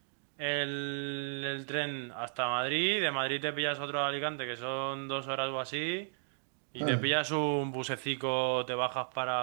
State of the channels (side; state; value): left; silent; digital silence